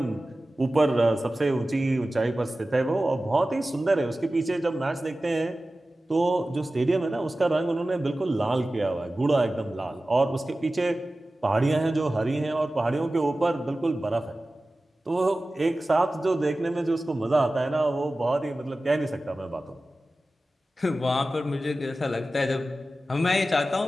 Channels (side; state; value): both; normal; correlation 0.96